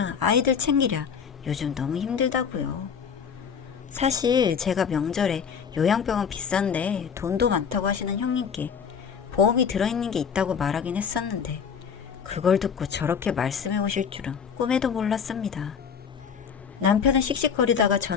아이들 챙기랴 요즘 너무 힘들다고요. 사실 제가 명절에 요양병원 비싼데 돈도 많다고 하시는 형님께 보험이 들어있는 게 있다고 말하긴 했었는데 그걸 듣고 저렇게 말씀해 오실 줄은 꿈에도 몰랐습니다. 남편은 씩씩거리다가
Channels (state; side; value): quieter; right; 6.8 dB